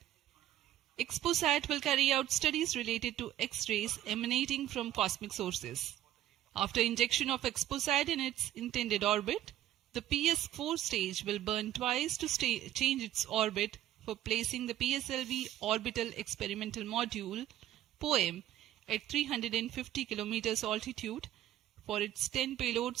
XPoSat will carry out studies related to X-rays emanating from cosmic sources. After injection of XPoSat in its intended orbit, the PS4 stage will burn twice to change its orbit for placing the PSLV orbital experimental module POEM at 350 kilometers altitude for its 10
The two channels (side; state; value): left; quieter; 12.9 dB